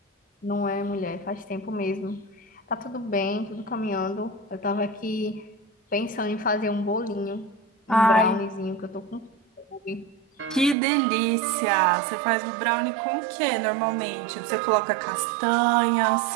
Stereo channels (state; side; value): drops out; left; at 10.8 s